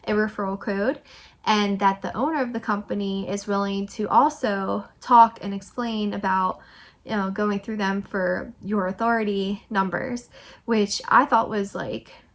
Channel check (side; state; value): both; identical; correlation 1.00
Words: a referral code, and that the owner of the company is willing to also talk and explain about, you know, going through them for your authority numbers, which I thought was like